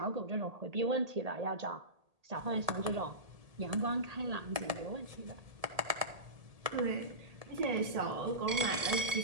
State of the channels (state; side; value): late; left; 1.8 ms